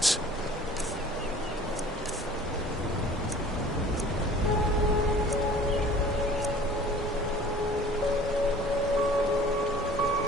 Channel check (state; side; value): normal; both; correlation 0.47